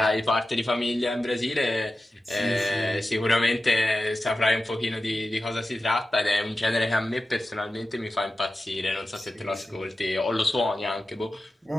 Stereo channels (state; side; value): normal; both; correlation 0.93